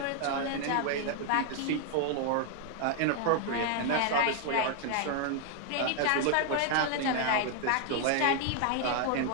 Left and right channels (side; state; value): both; different; correlation 0.00